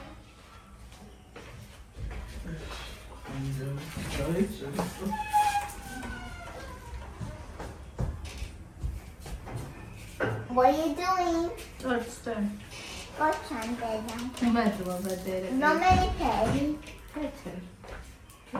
What are you doing? What's that? What's on there? Medlo vedere. No me li pedi. Peter.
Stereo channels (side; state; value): both; identical; correlation 1.00